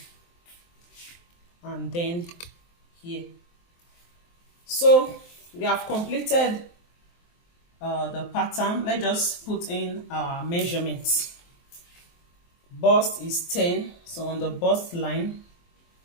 And then here. So we have completed the pattern. Let's just put in our measurements. Bust is 10, so on the bust line,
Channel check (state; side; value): late; right; 23 ms